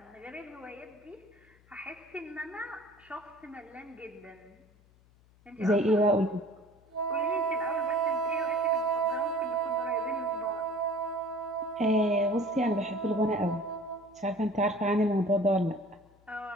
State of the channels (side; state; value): left; noise; hum, 29 dB below the sound